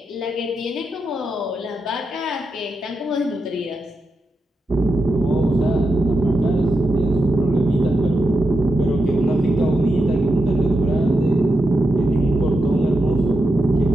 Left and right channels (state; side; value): normal; both; correlation 0.86